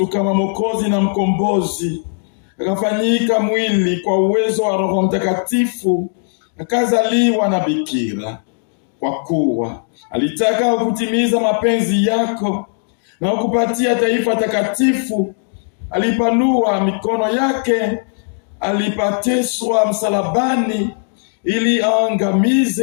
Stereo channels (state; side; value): silent; right; 68 dB below the other